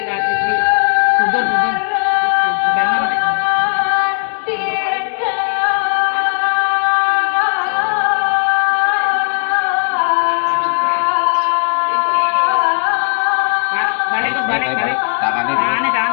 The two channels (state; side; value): silent; right; 59 dB below the other